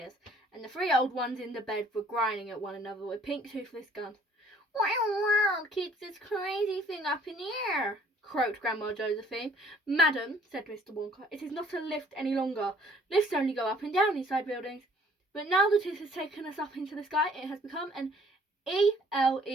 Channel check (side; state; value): both; normal; correlation 0.58